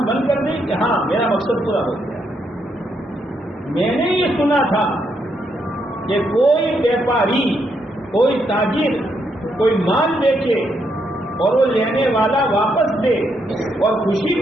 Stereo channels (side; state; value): both; normal; correlation 0.77